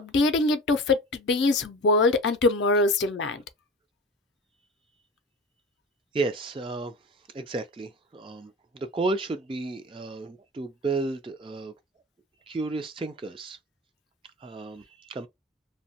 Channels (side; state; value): both; normal; correlation 0.33